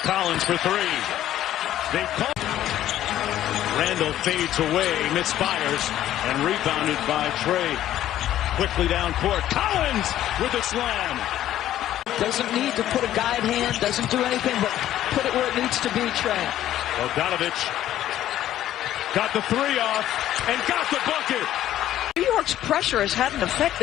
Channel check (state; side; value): quieter; right; 12.6 dB